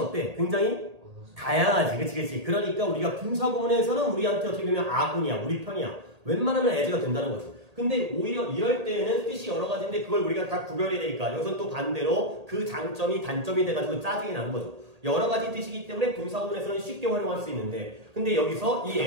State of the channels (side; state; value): left; late; 1.8 ms